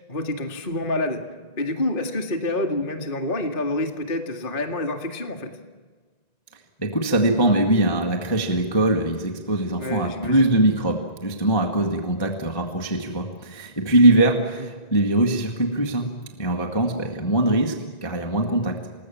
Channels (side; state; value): right; late; 1.9 ms